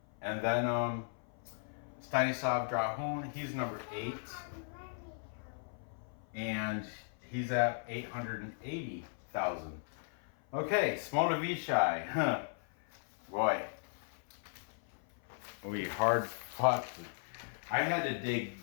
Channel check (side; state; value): right; silent; 53 dB below the other